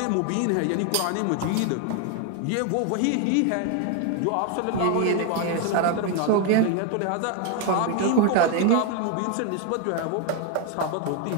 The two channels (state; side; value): different; both; correlation 0.01